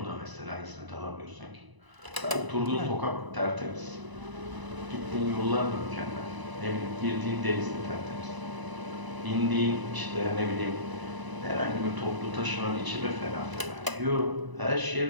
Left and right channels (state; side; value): late; left; 1.0 ms